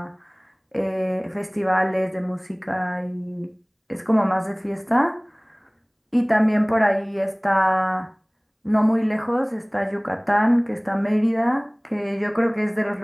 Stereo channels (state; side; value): identical; both; correlation 1.00